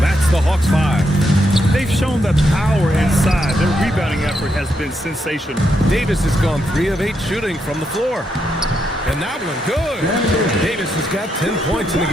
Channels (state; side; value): normal; both; correlation 0.80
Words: that's the Hawks 5. They've shown that power inside. Their rebounding effort has been sensational. Davis has gone 3 of 8 shooting from the floor. And that one, good. Davis has got 10 points in the